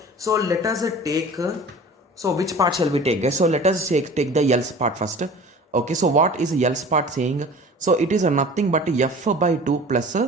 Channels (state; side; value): normal; both; correlation 0.42